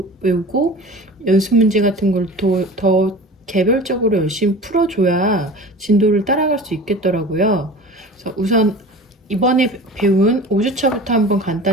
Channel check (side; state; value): both; normal; correlation 0.38